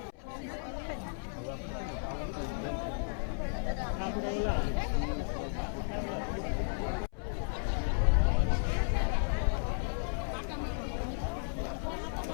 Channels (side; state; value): right; silent; 55 dB below the other